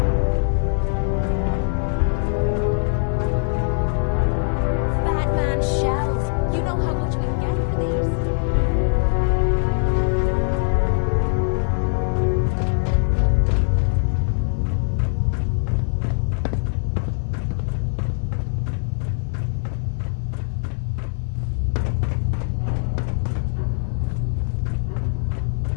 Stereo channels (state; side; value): silent; right; 56 dB below the other